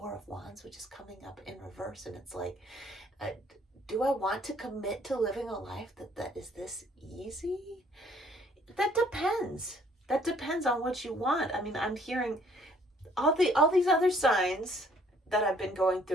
of Wands, which is coming up in reverse, and it's like, do I want to commit to living a life that is this easy? That depends. That depends on what you want. I mean, I'm hearing all these other signs that I've been going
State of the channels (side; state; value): both; normal; correlation 0.61